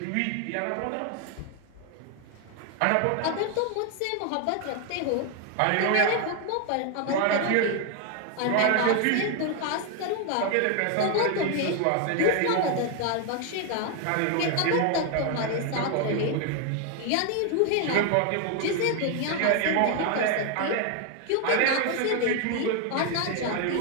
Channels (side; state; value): both; different; correlation 0.01